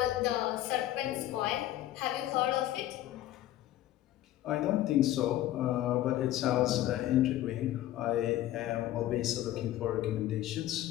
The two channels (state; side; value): quieter; right; 13.8 dB